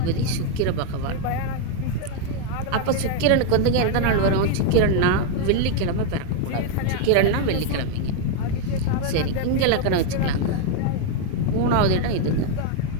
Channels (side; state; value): both; different; correlation 0.01